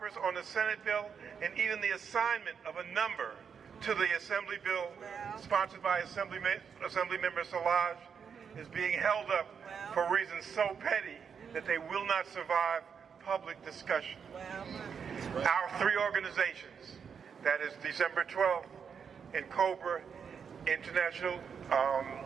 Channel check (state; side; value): quieter; left; 6.8 dB